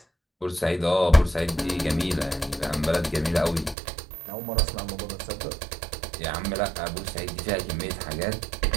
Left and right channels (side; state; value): left; drops out; at 3.8 s